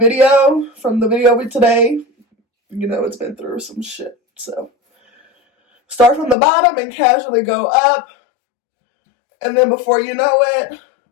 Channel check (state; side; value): drops out; right; at 6.4 s